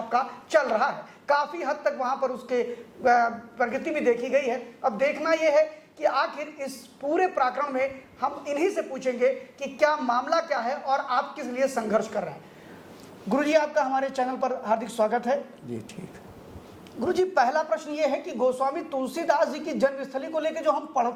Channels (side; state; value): both; identical; correlation 1.00